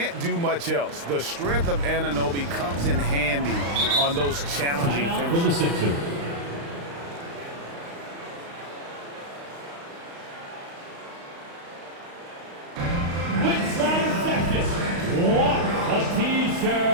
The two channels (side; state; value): left; late; 35 ms